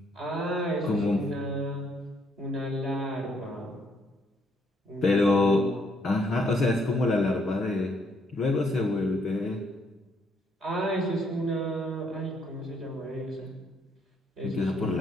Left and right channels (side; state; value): both; normal; correlation 0.71